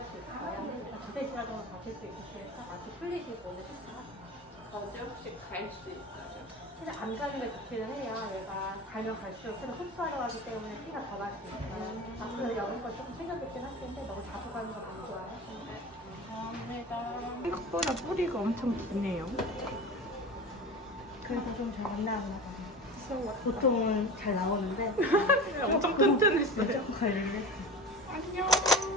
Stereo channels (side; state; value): both; normal; correlation 0.32